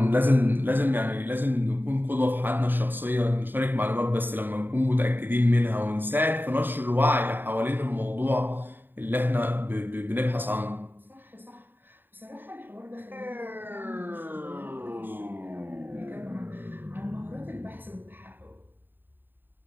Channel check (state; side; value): late; left; 0.093 ms